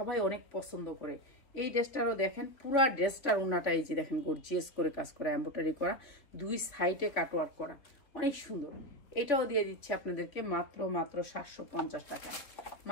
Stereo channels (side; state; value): right; late; 3.7 ms